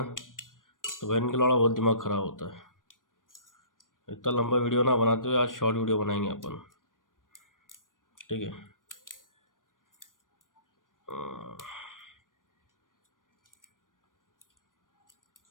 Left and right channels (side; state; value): right; late; 0.89 ms